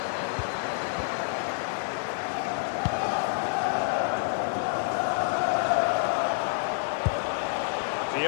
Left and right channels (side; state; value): right; silent; 59 dB below the other